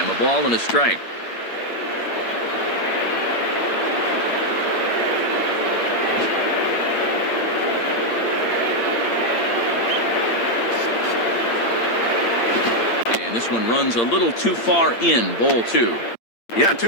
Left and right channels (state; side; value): late; right; 8.7 ms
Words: A ball and a strike. This one runs a little too far in, ball 2. Yeah,